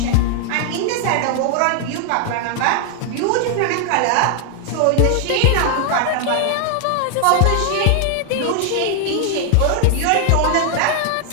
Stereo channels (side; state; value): both; different; correlation 0.00